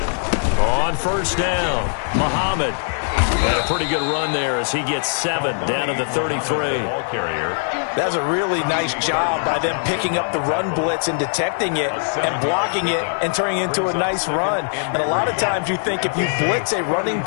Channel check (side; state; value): right; silent; digital silence